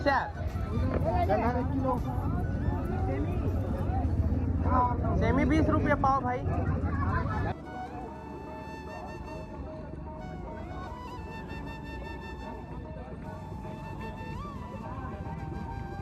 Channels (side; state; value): both; identical; correlation 1.00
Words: सेमी 20 रुपये पाव भाई।